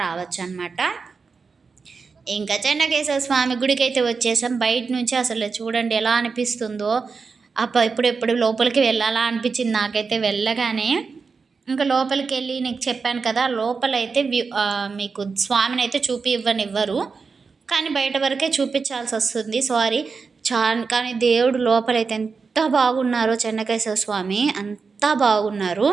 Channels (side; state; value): left; quieter; 4.9 dB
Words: రావచ్చు అనమాట. ఇంకా చెన్నకేశ్వర స్వామి గుడికి అయితే వచ్చేసాం. బయట నుంచి అసలు చూడండి ఎలా అనిపిస్తుందో. ఎప్పుడు లోపలికి వెళ్ళాలా అనిపించింది నాకైతే వెళ్ళగానే. ఇంకా లోపలికి వెళ్ళి నీకు చెప్పాను కదా, లోపలైతే మీకు స్వామిని అయితే ఇవ్వరు, కానీ బయట వరకే చూపించాల్సి వస్తుంది. సారీ కానీ దేవుడు లోపలైతే ఎంత బాగున్నారో, చెన్నకేశ్వర స్వామి అంతా బాగున్నారు.